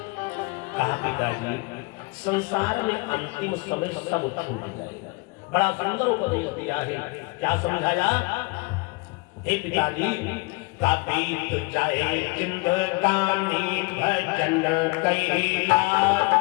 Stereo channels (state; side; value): quieter; right; 26.7 dB